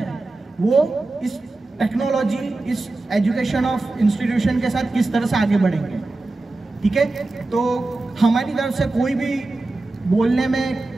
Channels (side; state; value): left; quieter; 3.1 dB